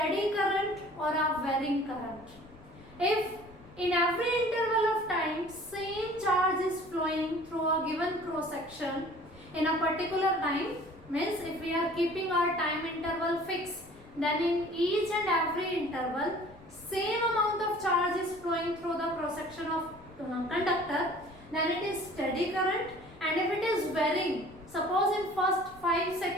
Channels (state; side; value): noise; left; rumble, 23 dB below the sound